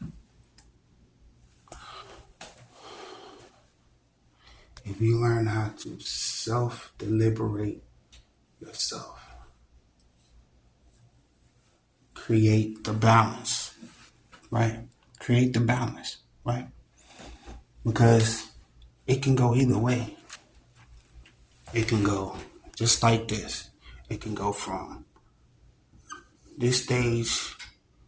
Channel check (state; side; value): identical; both; correlation 1.00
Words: If you learn how to self-deliberate yourself, create the balance, right? Create the balance, right? Because it can go either way. It can go just like this. It can go from this stage,